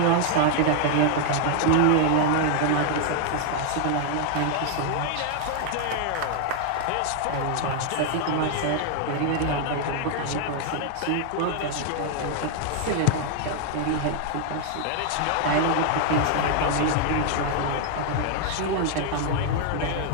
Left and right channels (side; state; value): both; different; correlation 0.00